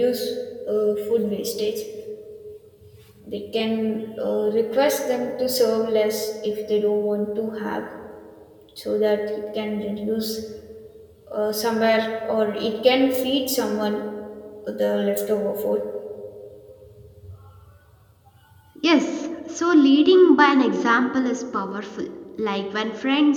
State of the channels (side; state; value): both; identical; correlation 1.00